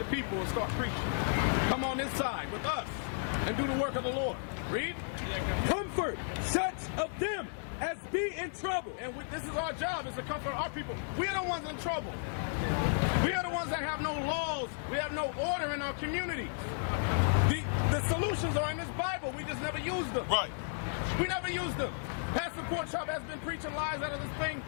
people and start preaching. Come on this side with us and do the work of the Lord. Read. Comfort such of them as be in trouble. And this is our job, is to comfort our people. We are the ones in trouble. We are the ones that have no laws. We have no order in our communities. The solutions are in this Bible. We just never use them. Right. We never use them. Pastor Porkchop has been preaching lies out of this thing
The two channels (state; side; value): silent; right; digital silence